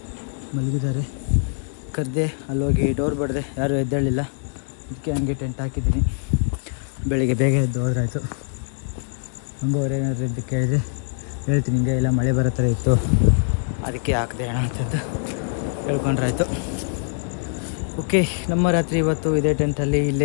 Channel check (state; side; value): silent; right; digital silence